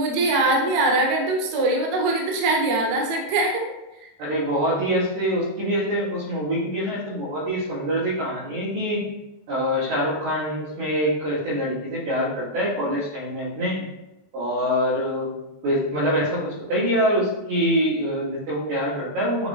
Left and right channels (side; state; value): left; late; 21 ms